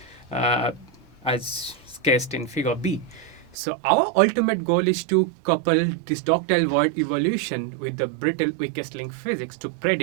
uh, as sketched in figure B. So our ultimate goal is to couple this ductile void evolution with the brittle weakest link physics to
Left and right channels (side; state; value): left; drops out; at 3.6 s